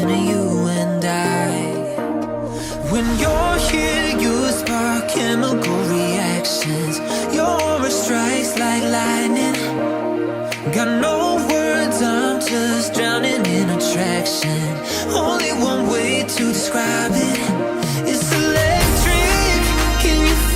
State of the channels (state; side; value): identical; both; correlation 1.00